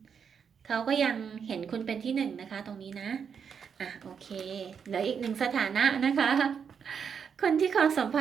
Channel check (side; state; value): left; quieter; 6.9 dB